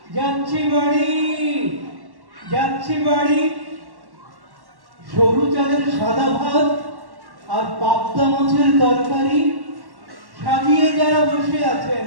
যাচ্ছি বাড়ি, যাচ্ছি বাড়ি। সরু চালের সাদা ভাত আর পাবদা মাছের তরকারি সাজিয়ে যারা বসে আছেন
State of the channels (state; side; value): late; left; 1.1 ms